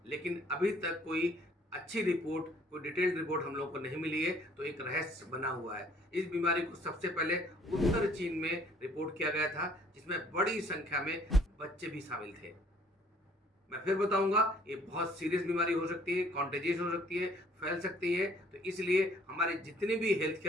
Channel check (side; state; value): both; normal; correlation 0.59